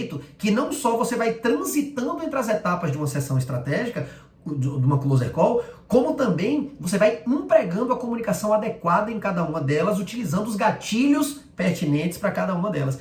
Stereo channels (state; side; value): identical; both; correlation 1.00